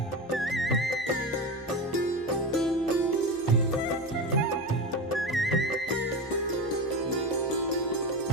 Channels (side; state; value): left; noise; hum, 30 dB below the sound